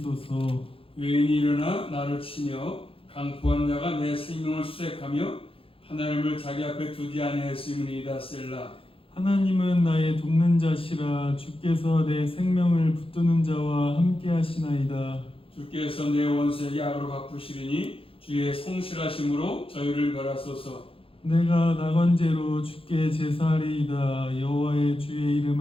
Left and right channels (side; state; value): right; late; 0.27 ms